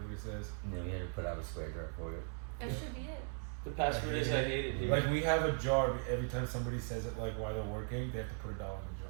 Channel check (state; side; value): silent; left; 52 dB below the other